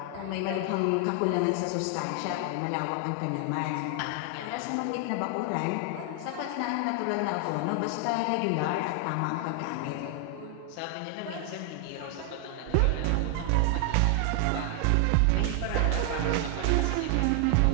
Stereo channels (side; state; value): both; different; correlation 0.00